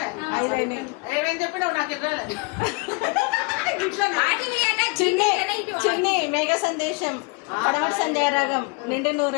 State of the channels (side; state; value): right; quieter; 28.9 dB